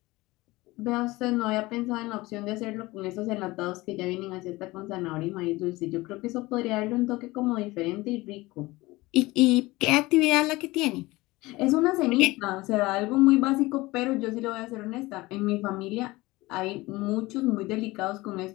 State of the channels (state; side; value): quieter; right; 20.5 dB